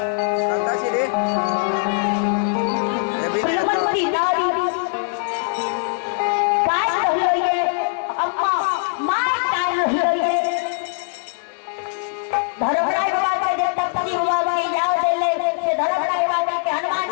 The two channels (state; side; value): silent; right; digital silence